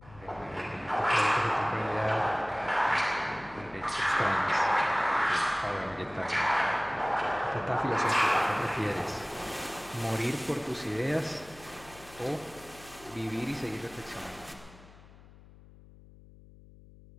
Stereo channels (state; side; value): noise; left; hum, 22 dB below the sound